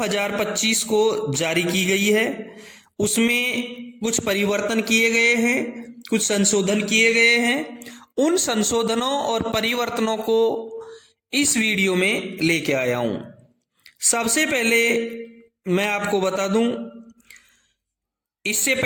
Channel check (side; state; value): both; identical; correlation 1.00